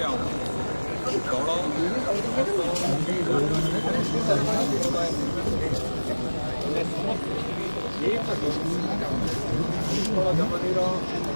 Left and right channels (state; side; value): inverted; both; correlation -1.00